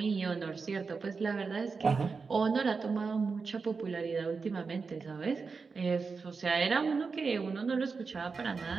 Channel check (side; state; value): left; quieter; 4.8 dB